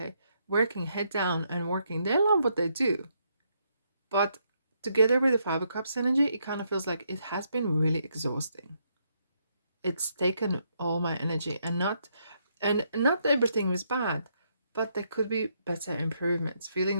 Working head down and working. They love what they do. But together with the Five of Cups energy, it kind of feels like it has been really exhausting. It's taken all my energy, and not everything was bad, but there could be better improvements, feeling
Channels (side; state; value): both; inverted; correlation -0.76